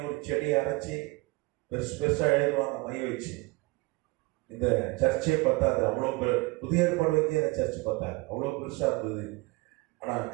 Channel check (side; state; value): left; quieter; 24.2 dB